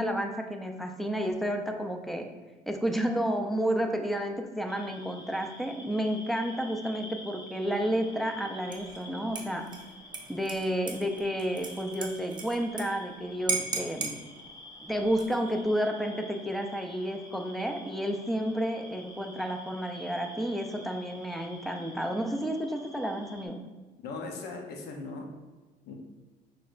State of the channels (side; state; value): both; normal; correlation 0.79